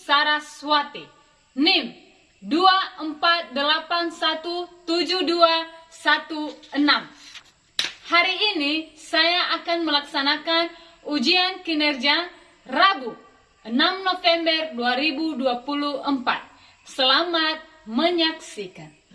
NIM 24817216. Hari ini saya akan melaksanakan ujian kinerja Rabu 6 November 2024. Selamat menyaksikan.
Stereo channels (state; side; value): identical; both; correlation 1.00